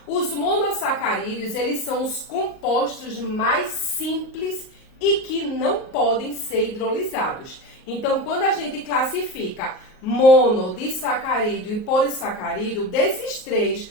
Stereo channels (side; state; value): right; late; 38 ms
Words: Os monossacarídeos, eles são os compostos mais simples e que não podem ser hidrolisados. Então, quando a gente classifica mono, disacarídeo e polissacarídeo, desses três,